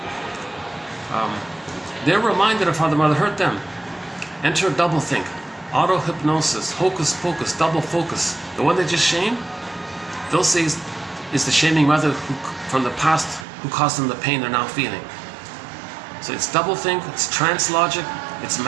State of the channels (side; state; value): left; drops out; at 13.5 s